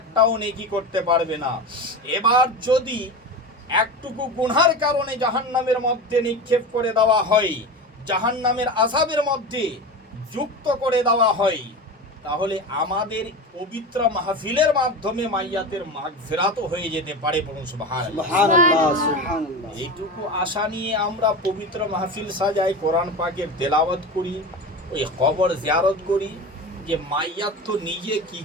নেকি করতে পারবে না। এবার যদি একটুকু গুনার কারণে জাহান্নামের মধ্যে নিক্ষেপ করে দেওয়া হয়, জাহান্নামের আযাবের মধ্যে যুক্ত করে দেওয়া হয়, তাহলে আমাদের পবিত্র মাহফিলের মাধ্যমে মাইয়াতের মাগফিরাতও হয়ে যেতে পারে। বলুন সুবহানাল্লাহ। সুবহানাল্লাহ, সুবহানাল্লাহ। এইটুকু আশা নিয়ে আমরা পবিত্র মাহফিল সাজাই, কোরআন পাকের তেলাওয়াত করি, ওই কবর জিয়ারত করি, যে মাইয়াত তো নিজে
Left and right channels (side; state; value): both; normal; correlation 0.26